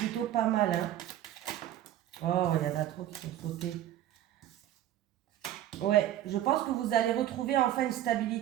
pas mal. Hein. Oh, il y en a trop qui sont sautés. Ouais, je pense que vous allez retrouver enfin une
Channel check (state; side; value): quieter; left; 12.5 dB